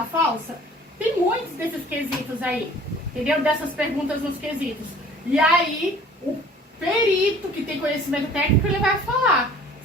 falsa? Tem muitos desses quesitos aí, entendeu? Dessas perguntas nos quesitos. E aí, o perito que tem conhecimento técnico, ele vai falar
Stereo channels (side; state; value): both; normal; correlation 0.50